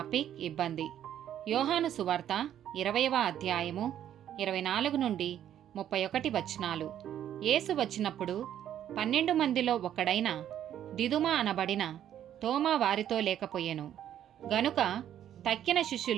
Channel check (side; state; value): left; quieter; 10.7 dB